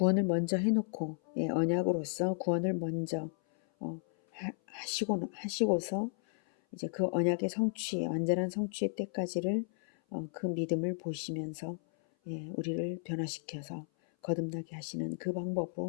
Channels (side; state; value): right; silent; 55 dB below the other